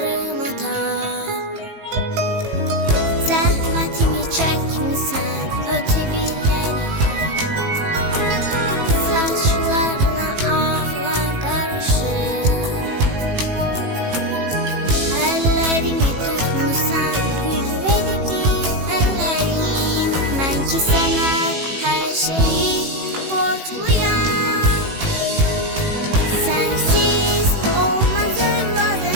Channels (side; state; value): left; late; 18 ms